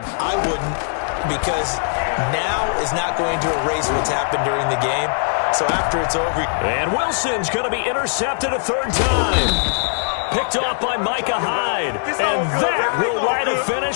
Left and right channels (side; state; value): right; silent; 55 dB below the other